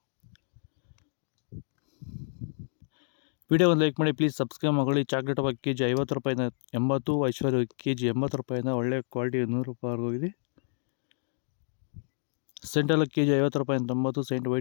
ವಿಡಿಯೋ ಒಂದು ಲೈಕ್ ಮಾಡಿ, ಪ್ಲೀಸ್ ಸಬ್ಸ್ಕ್ರೈಬ್ ಮಾಡ್ಕೊಳ್ಳಿ. ಚಾಕ್ಲೇಟ್ ಹಬ್ಬ KG 50 ರೂಪಾಯಿಂದ 80, ಐಶ್ವರ್ಯ KG 80 ರೂಪಾಯಿಂದ ಒಳ್ಳೆ ಕ್ವಾಲಿಟಿ 100 ರೂಪಾಯಿ ಹೋಗಿದೆ. ಸೆಂಟೆಲ್ಲ KG 50 ರೂಪಾಯಿಂದ 90, ಸೆಂಟ್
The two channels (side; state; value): right; silent; digital silence